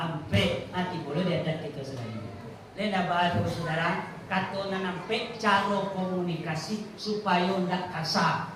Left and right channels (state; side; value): identical; both; correlation 1.00